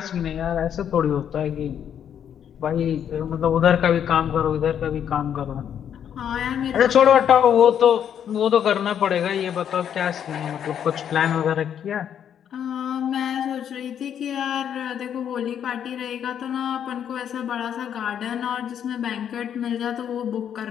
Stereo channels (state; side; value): quieter; right; 9.0 dB